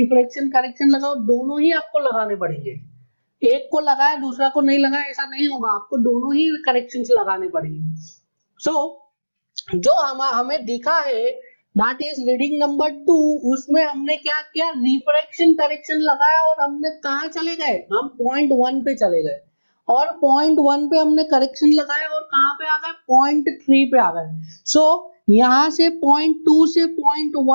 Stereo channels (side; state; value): both; inverted; correlation -1.00